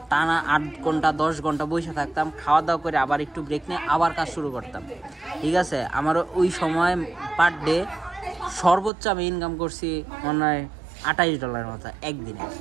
টানা 8 ঘন্টা 10 ঘন্টা বসে থাকতাম, খাওয়া দাওয়া করে আবার একটু ব্রেক নিয়ে আবার কাজ শুরু করতাম, ঠিক আছে। আমার ওই সময় পার ডে সর্বোচ্চ আমি ইনকাম করছি মনে হয় $28 মতো একদিনে,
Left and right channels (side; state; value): left; drops out; at 8.9 s